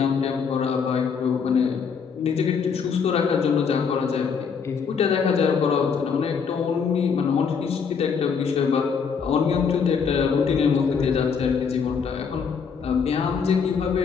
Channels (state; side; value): quieter; right; 6.1 dB